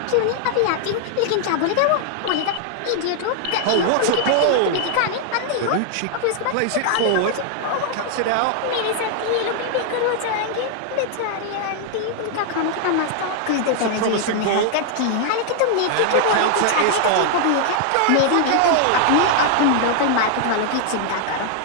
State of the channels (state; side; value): different; both; correlation 0.00